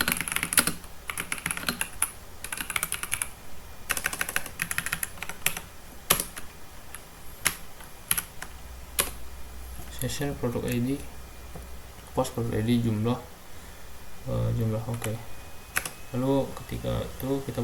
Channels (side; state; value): both; identical; correlation 1.00